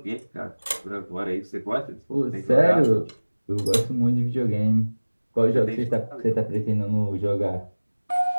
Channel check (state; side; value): inverted; both; correlation -1.00